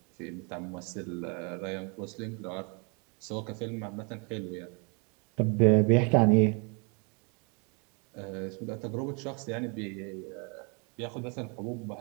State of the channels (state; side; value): quieter; left; 34.0 dB